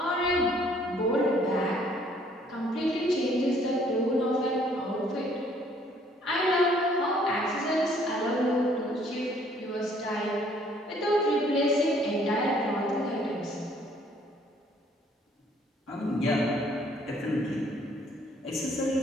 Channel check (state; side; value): normal; both; correlation 0.62